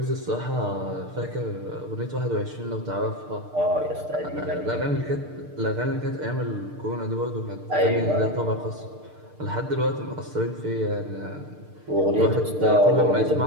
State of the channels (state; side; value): late; left; 6.6 ms